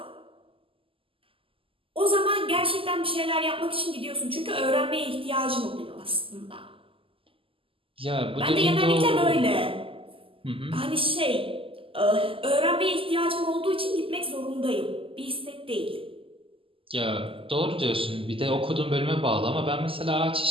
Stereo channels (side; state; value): left; late; 0.26 ms